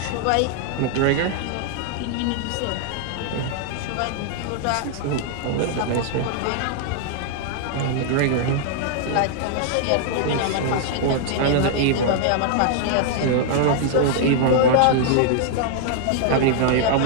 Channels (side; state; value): both; different; correlation 0.00